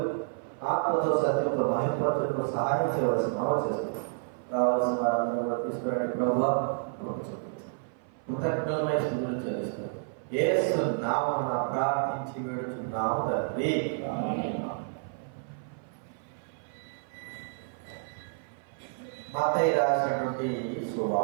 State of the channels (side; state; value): left; silent; 55 dB below the other